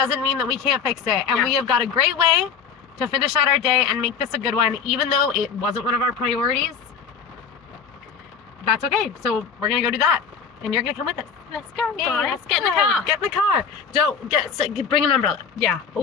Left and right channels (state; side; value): quieter; right; 6.3 dB